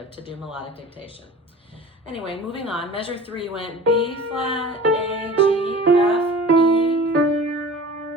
to do melodic dictation. Anyway, moving on. Measure 3 went B flat, A, G, F, E.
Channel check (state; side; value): normal; both; correlation 0.40